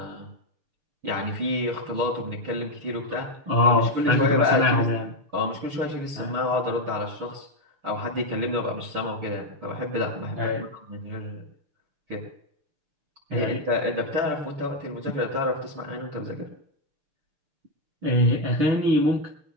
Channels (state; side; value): late; left; 6.7 ms